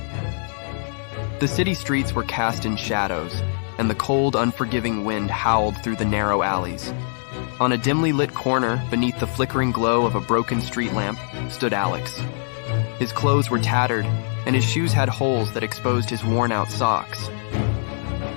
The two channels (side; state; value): right; silent; digital silence